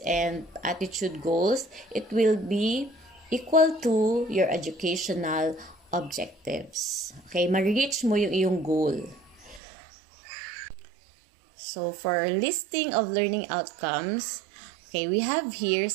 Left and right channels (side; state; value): left; drops out; at 9.6 s